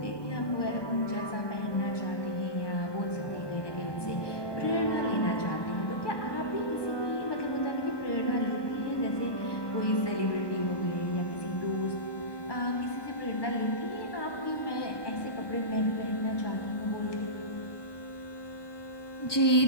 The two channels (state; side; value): late; right; 1.2 ms